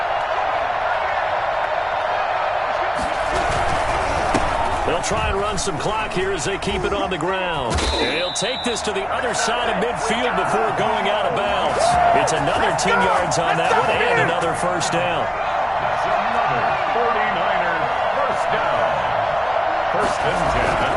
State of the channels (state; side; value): identical; both; correlation 1.00